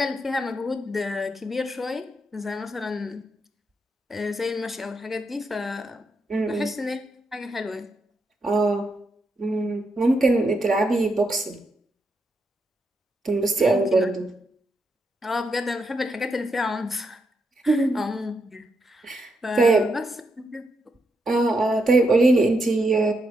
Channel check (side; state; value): both; normal; correlation 0.81